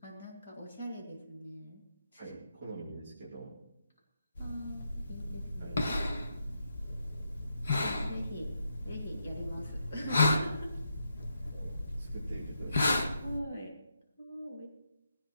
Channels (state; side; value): inverted; both; correlation -0.82